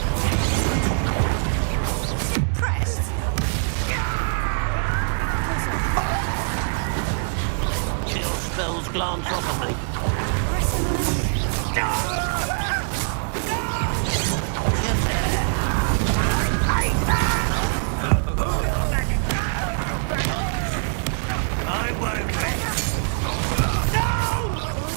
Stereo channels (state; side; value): silent; left; digital silence